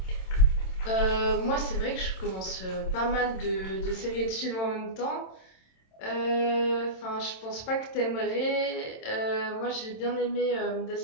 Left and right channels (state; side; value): late; right; 27 ms